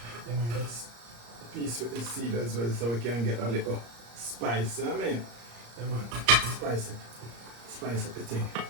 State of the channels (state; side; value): late; left; 34 ms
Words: this piece with the seed as well so we can get a little spice. I mean, spice up the thing.